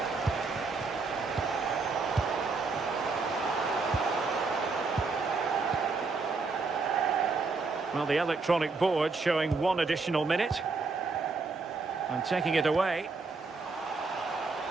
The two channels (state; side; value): quieter; left; 4.1 dB